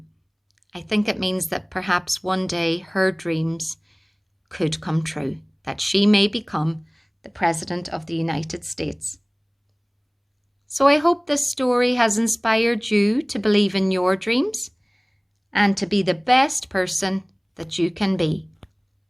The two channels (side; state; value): both; identical; correlation 1.00